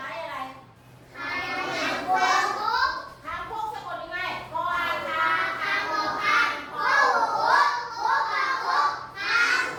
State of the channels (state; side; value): identical; both; correlation 1.00